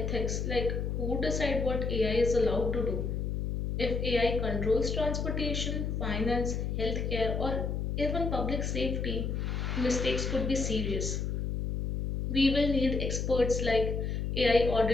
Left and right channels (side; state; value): left; noise; hum, 1 dB below the sound